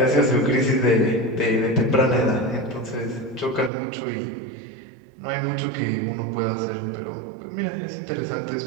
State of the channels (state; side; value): drops out; left; at 3.7 s